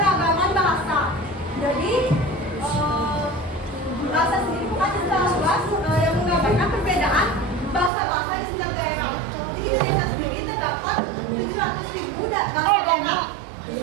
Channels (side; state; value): left; drops out; at 7.9 s